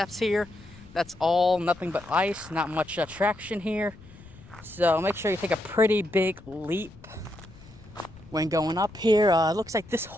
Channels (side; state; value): left; noise; rumble, 21 dB below the sound